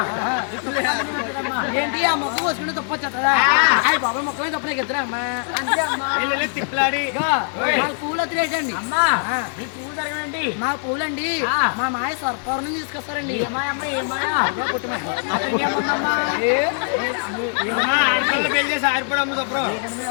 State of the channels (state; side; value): silent; right; 64 dB below the other